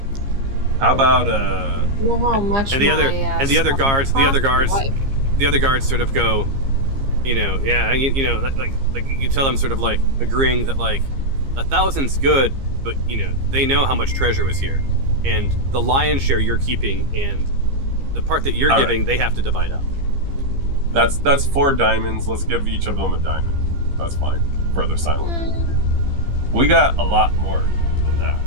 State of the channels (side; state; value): left; late; 15 ms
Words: How about You know how much And the other my, and the other stuff guards, the other guards, costs? the other guards sort of go, like you tell them sort of like agreeing that like 1,000's good, but they know how much treasure was here, and the lion's share you're keeping, and the part that you're All giving right. they have to divide up. that's 4 diamonds. Let's give each of them a diamond. That's fine. Further silence. We got a lot more than that,